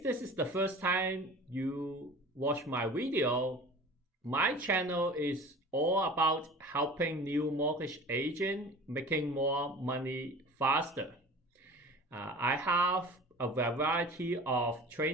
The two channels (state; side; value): normal; both; correlation 0.40